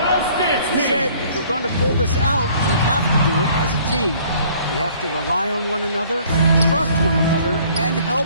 He said, if we're going to pull this out, we have to do it as a team. We have to rely on one another, trust one another, and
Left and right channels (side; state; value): both; inverted; correlation -0.56